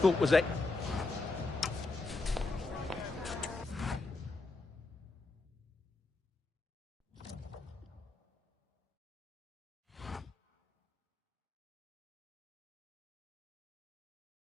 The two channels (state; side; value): quieter; right; 3.4 dB